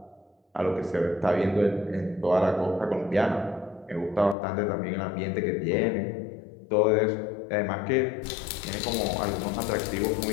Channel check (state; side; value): drops out; right; at 4.4 s